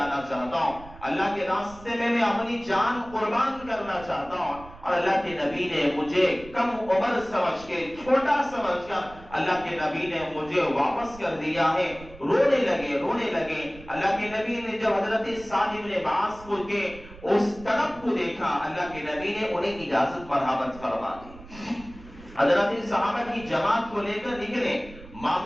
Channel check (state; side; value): noise; right; rumble, 19 dB below the sound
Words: چاہتا ہوں، اللہ کے راستے میں اپنی جان قربان کرنا چاہتا ہوں، اور اللہ کے نبی نے مجھے کم عمر سمجھ کے، چھوٹا سمجھ کر اللہ کے نبی نے مجھے واپس کر دیا ہے۔ رونے لگے۔ اللہ کے نبی نے جب حضرت سعد بن معاذ کو کے اس طرف کو دیکھا، اللہ کے نبی نے انہیں اجازت مرحمت فرما دی۔ حضرت صحابہ کی جماعت کو لے کر نکلے،